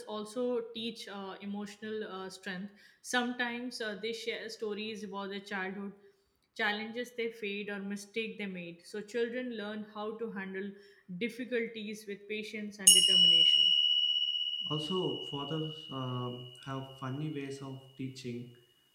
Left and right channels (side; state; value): both; identical; correlation 1.00